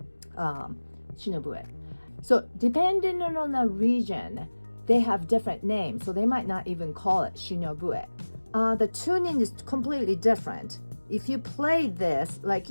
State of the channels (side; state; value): both; inverted; correlation -1.00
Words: Shinobue. So depending on the region, they have different names. So they might not even call it Shinobue. The tuning is completely different. If you play this like